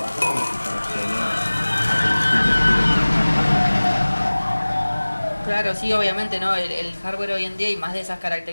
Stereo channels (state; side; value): inverted; both; correlation -1.00